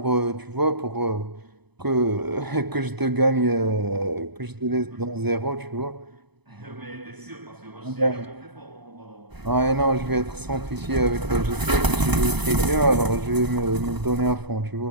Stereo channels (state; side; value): late; left; 0.99 ms